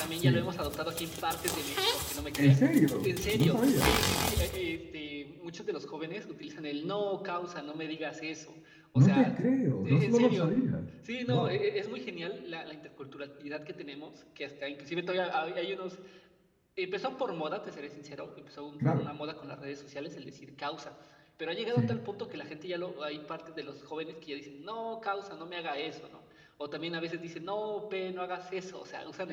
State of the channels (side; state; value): both; identical; correlation 1.00